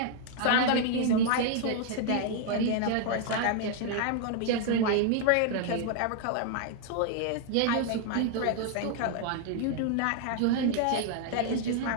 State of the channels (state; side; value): different; both; correlation 0.00